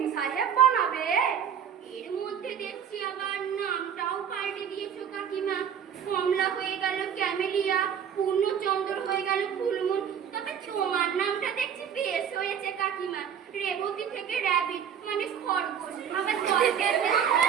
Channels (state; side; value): quieter; left; 8.3 dB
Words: সাহেব বানাবে? এর মধ্যে দেখছি আবার নামটাও পাল্টে দিয়েছো কাকিমা। কমলা হয়ে গেল ক্যামেলিয়া, পূর্ণচন্দ্র হয়ে গেল ফুলমুন। তবে তোমার নামটা দেখছি বেশ হয়েছে কাকিমা। রেবতী থেকে র্যাবিট, মানে খরগোশ। আবার জলকে